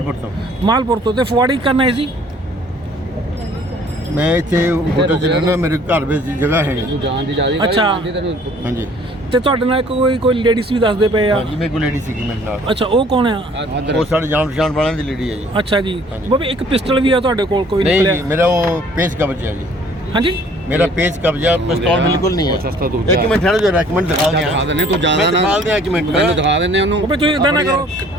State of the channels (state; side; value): normal; both; correlation 0.56